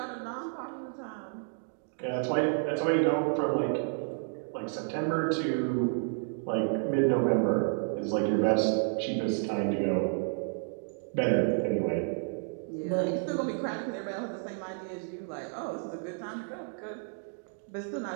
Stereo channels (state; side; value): silent; left; 57 dB below the other